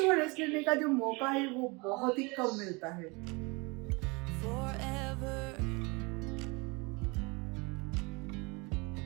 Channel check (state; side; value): quieter; left; 27.8 dB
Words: रेस्ट लेने का जो मौका है वो बहुत ही कम मिलता है।